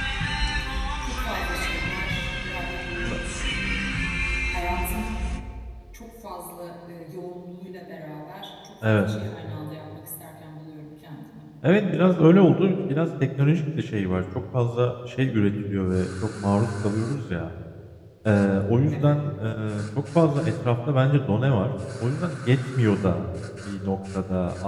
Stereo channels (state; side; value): identical; both; correlation 1.00